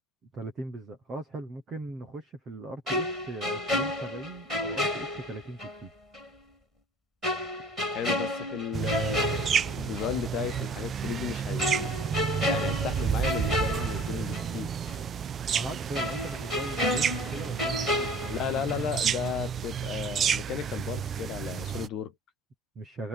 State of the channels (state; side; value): normal; both; correlation 0.47